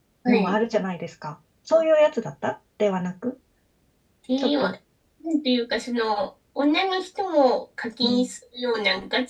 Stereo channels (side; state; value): both; identical; correlation 1.00